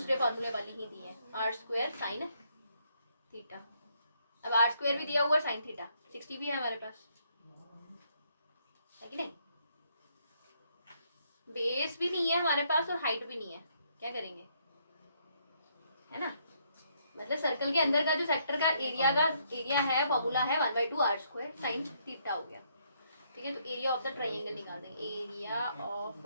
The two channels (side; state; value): both; inverted; correlation -0.72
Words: फार्मूले वाली ही दी है, आर स्क्वायर साइन थीटा। अब आर स्क्वायर भी दिया हुआ साइन थीटा, 60 भी है हमारे पास, है कि नहीं। बेस भी नहीं है हमारे पास और हाइट भी नहीं है, क्या करेंगे, है ना। मतलब सर्कल के अंदर का जो सेक्टर का एरिया है, फॉर्मूला है 1/2 आर स्क्वायर साइन थीटा हो गया। ठीक है, तो एरिया ऑफ द ट्राइंगल निकाल देंगे, एरिया ऑफ